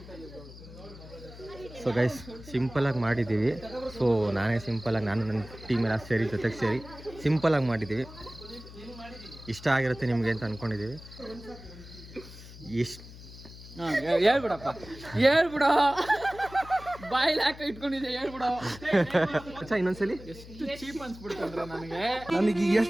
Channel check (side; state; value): left; noise; hum, 16 dB below the sound